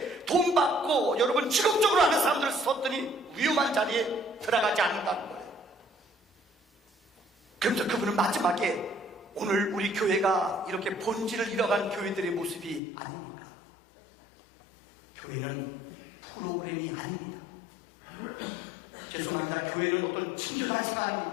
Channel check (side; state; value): right; drops out; at 12.8 s